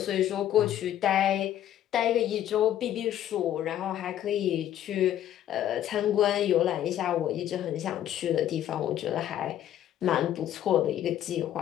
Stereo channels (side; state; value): right; quieter; 11.6 dB